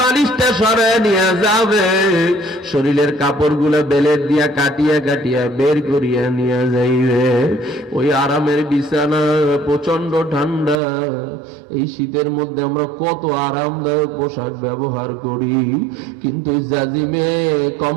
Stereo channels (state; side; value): drops out; left; at 10.8 s